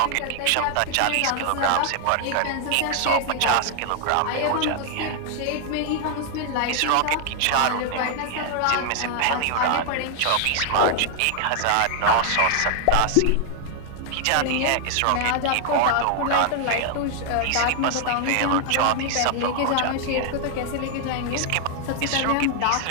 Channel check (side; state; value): both; different; correlation 0.00